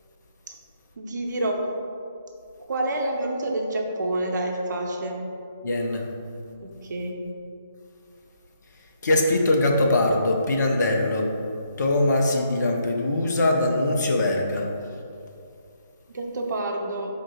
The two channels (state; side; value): inverted; both; correlation -0.73